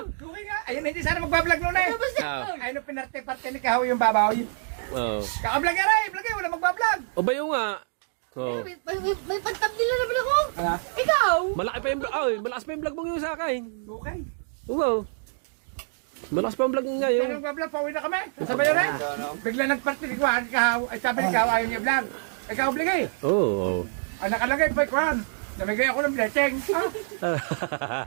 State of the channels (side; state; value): left; silent; digital silence